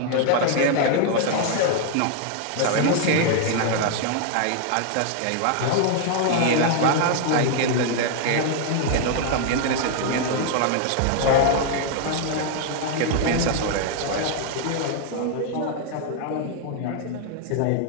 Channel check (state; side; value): different; both; correlation 0.00